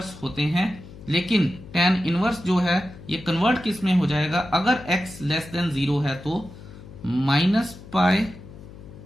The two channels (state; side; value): noise; left; hum, 17 dB below the sound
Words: होते हैं, लेकिन tan इनवर्स जो है ये कन्वर्ट किस में हो जाएगा, अगर x लेस देन 0 है तो -π